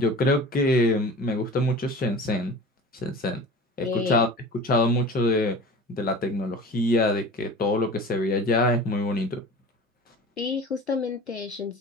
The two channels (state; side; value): normal; both; correlation 0.38